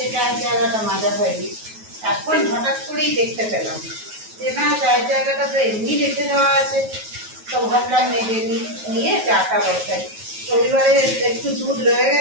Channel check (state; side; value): late; left; 9.3 ms